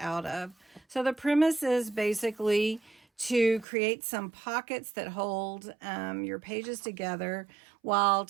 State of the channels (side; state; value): left; drops out; at 3.7 s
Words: of. So the premise is basically to create some pockets that hold your pages together while